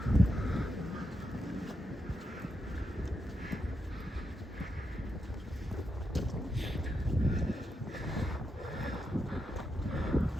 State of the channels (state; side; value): normal; both; correlation 0.84